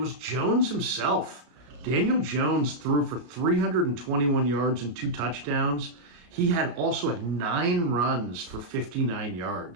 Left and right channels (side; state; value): left; late; 34 ms